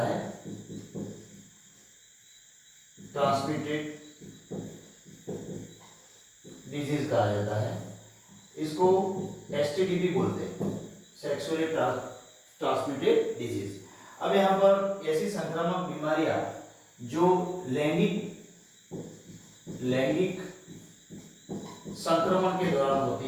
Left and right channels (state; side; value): identical; both; correlation 1.00